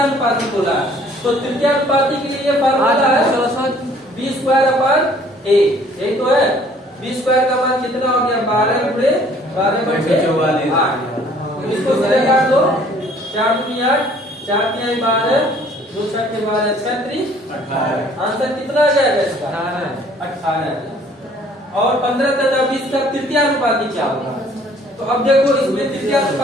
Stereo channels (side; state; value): both; normal; correlation 0.57